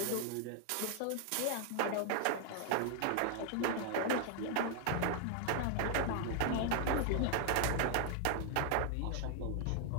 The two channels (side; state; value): both; different; correlation 0.00